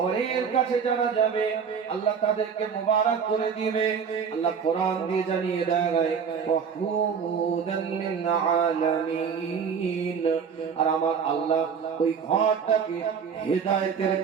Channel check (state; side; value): quieter; left; 6.6 dB